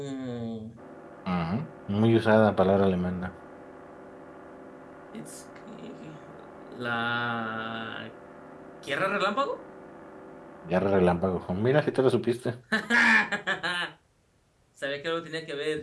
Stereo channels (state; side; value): identical; both; correlation 1.00